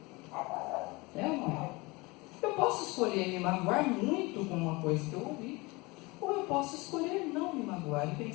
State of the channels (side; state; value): right; quieter; 24.3 dB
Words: É ou não é? Eu posso escolher me magoar muito com uma coisa que eu ouvi. Ou eu posso escolher não me magoar e